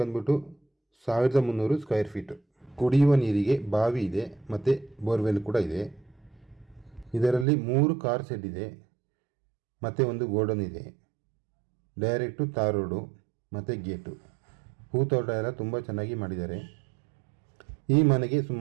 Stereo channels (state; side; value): drops out; left; at 7.5 s